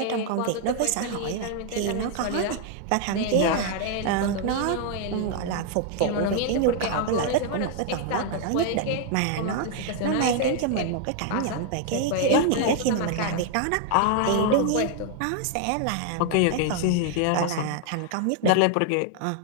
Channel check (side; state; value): both; different; correlation 0.00